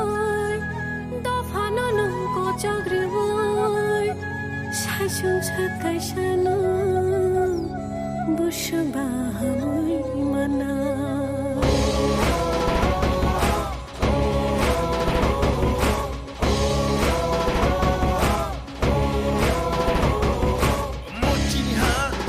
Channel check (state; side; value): identical; both; correlation 1.00